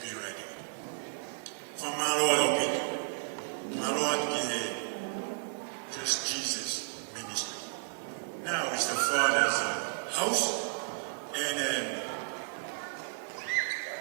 ready. For my Lord, people, my Lord, just Jesus ministry. Now it's the Father's house, and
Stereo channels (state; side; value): silent; left; 56 dB below the other